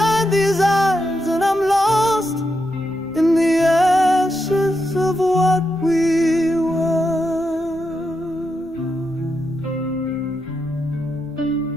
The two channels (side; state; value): left; noise; rumble, 24 dB below the sound